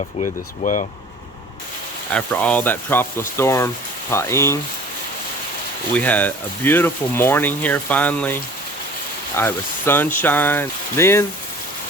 with as well. After all that Tropical Storm Paeng, we had a beautiful morning here finally. It was sunshine. Then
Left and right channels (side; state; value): both; normal; correlation 0.46